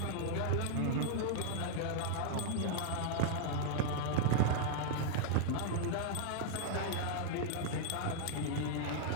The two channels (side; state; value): both; different; correlation -0.01